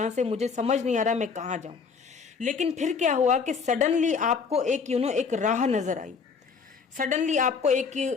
से, मुझे समझ नहीं आ रहा मैं कहाँ जाऊं। लेकिन फिर क्या हुआ कि सडनली आपको एक एक राह नजर आई, सडनली आपको एक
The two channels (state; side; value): quieter; right; 5.5 dB